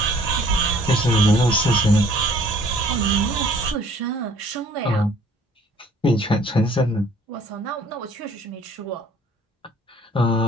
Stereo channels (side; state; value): both; normal; correlation 0.56